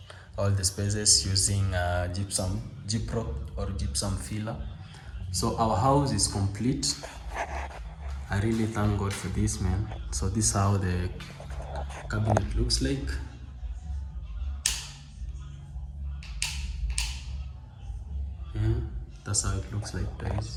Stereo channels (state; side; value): identical; both; correlation 1.00